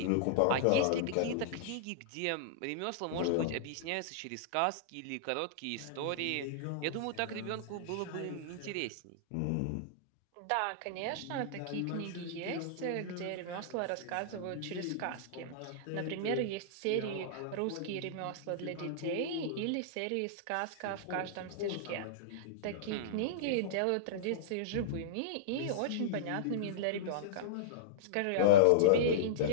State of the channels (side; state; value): both; different; correlation -0.02